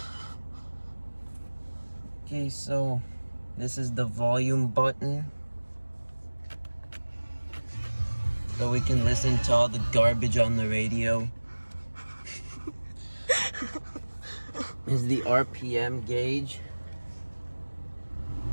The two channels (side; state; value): both; inverted; correlation -1.00